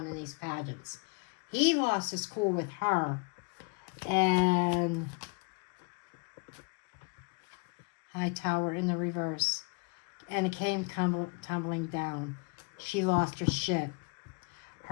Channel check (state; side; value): quieter; right; 32.5 dB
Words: in these pageants. He lost his cool with her, and High Tower in the reverse, and it came tumbling down. She lost her shit.